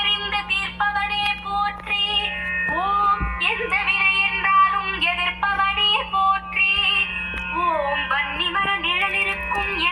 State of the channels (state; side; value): identical; both; correlation 1.00